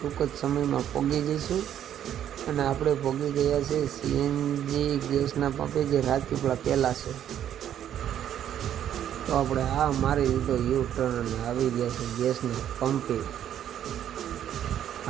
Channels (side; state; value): left; quieter; 10.3 dB